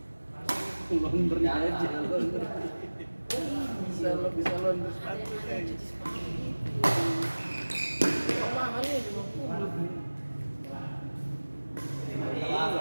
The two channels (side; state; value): both; inverted; correlation -1.00